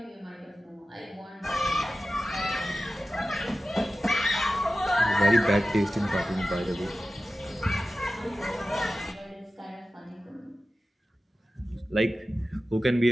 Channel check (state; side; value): normal; both; correlation 0.94